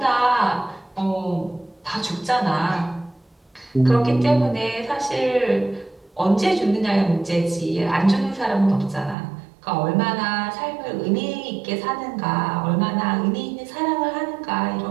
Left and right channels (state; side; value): drops out; left; at 9.2 s